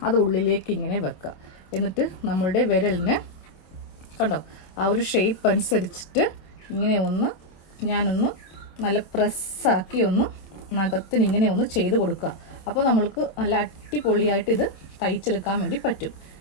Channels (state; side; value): late; right; 26 ms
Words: അത് ഉള്ളിലേക്ക് ഇങ്ങനെ വെക്കുക. എന്നിട്ട് നമ്മളുടെ വിരലിന് കണ്ടോ ആ ഒരു ഷേപ്പ് അനുസരിച്ചിട്ട് ഇങ്ങനെ ഞാനൊന്ന് നല്ല പ്രസ്സാക്കി നഖത്തിന് ഇങ്ങനെ ചെയ്ത് കൊടുക്കുക. അപ്പോൾ നമ്മൾക്ക് നല്ല അടിപൊളിയായിട്ട് ഇത് തയ്ച്ചെടുക്കാൻ വേണ്ടി പറ്റും.